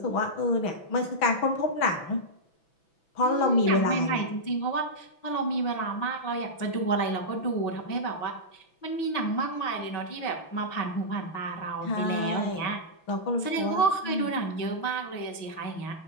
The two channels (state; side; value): late; right; 6.0 ms